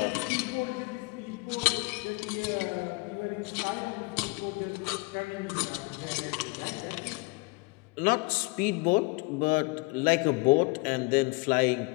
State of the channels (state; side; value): quieter; right; 27.3 dB